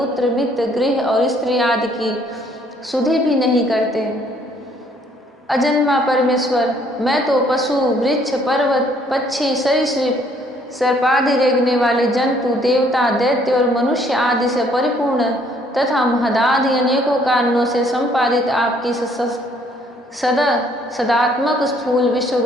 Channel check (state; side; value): normal; both; correlation 0.64